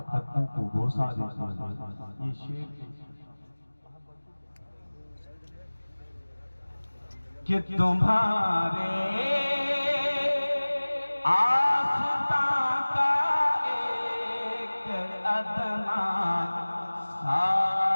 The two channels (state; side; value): inverted; both; correlation -1.00